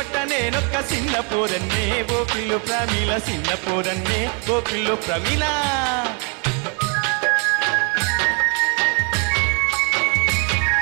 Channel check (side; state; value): left; quieter; 37.0 dB